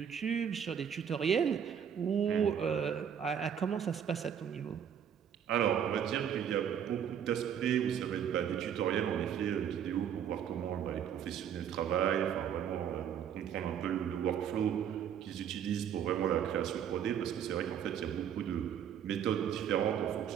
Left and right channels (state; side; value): quieter; left; 8.6 dB